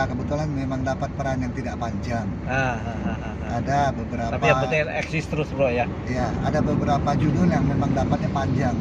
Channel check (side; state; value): both; identical; correlation 1.00